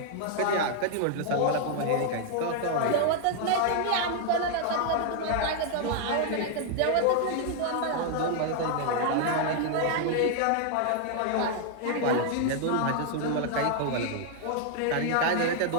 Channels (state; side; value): different; both; correlation 0.00